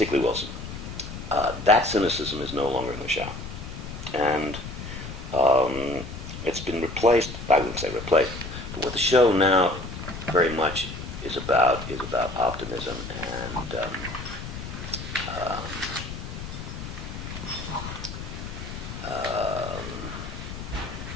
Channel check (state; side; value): noise; left; rumble, 9 dB below the sound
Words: Wilson. That cynicism is no longer in the show. And it's been replaced, I wouldn't say replaced, but what the show now very much is about optimism and